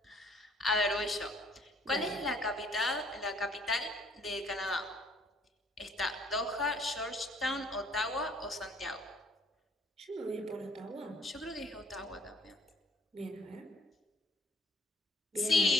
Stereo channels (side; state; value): both; normal; correlation 0.61